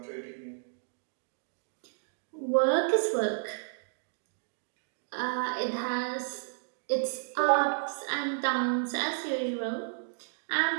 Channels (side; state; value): left; silent; digital silence